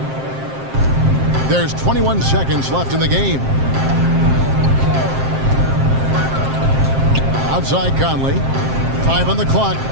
There's 21 seconds left in the game. Outside Conley. 5 on the clock.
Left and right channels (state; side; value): late; left; 7.6 ms